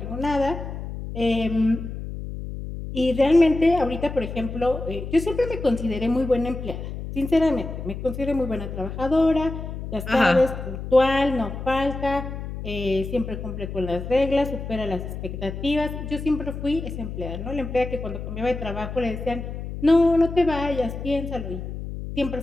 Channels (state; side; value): noise; left; hum, 7 dB below the sound